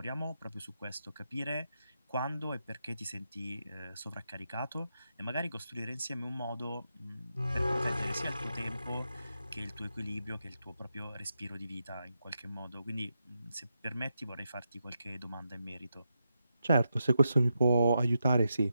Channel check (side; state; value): both; inverted; correlation -0.86